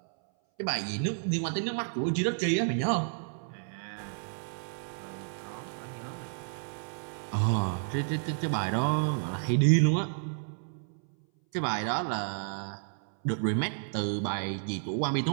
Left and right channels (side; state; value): left; silent; 57 dB below the other